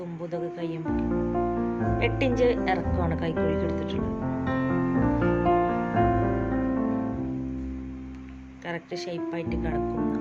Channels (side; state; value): both; identical; correlation 1.00